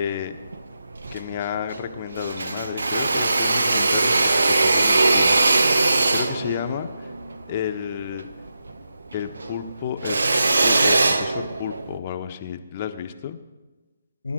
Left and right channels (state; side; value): inverted; both; correlation -0.87